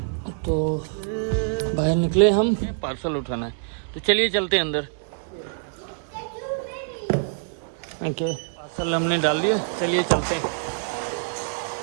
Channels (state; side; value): silent; left; 61 dB below the other